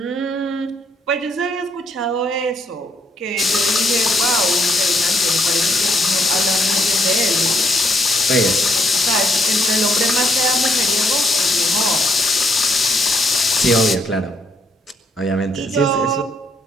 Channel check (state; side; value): normal; both; correlation 0.72